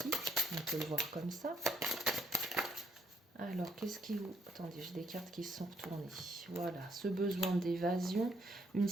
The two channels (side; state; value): both; normal; correlation 0.71